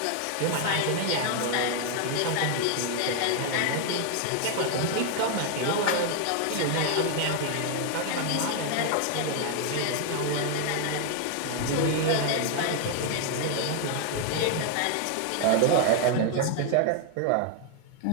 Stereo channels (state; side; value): different; both; correlation 0.00